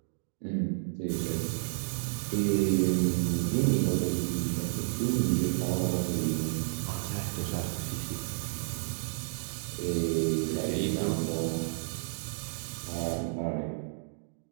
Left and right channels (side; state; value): left; silent; digital silence